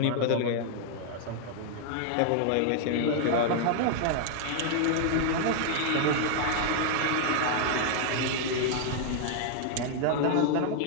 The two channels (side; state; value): both; different; correlation 0.00